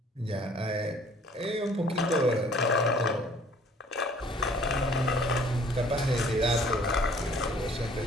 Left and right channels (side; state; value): both; normal; correlation 0.55